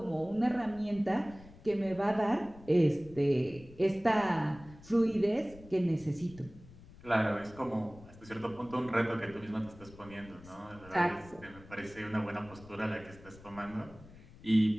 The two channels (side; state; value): left; noise; rumble, 20 dB below the sound